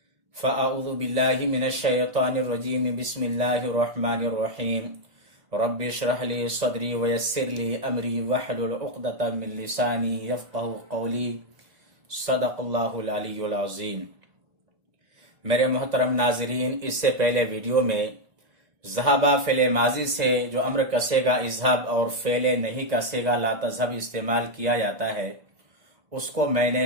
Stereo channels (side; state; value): left; late; 1.9 ms